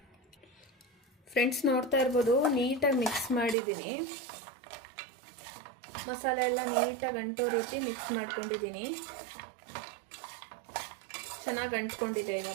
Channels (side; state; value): left; drops out; at 3.6 s